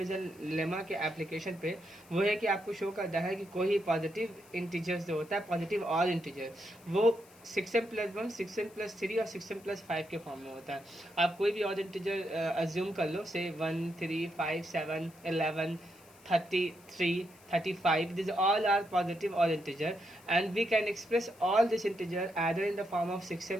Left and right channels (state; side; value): noise; left; hiss, 26 dB below the sound